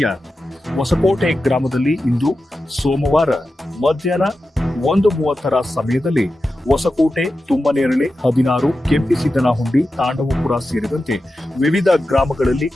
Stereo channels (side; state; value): both; normal; correlation 0.92